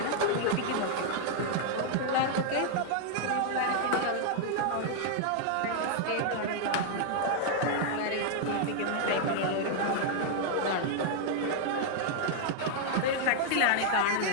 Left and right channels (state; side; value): different; both; correlation 0.00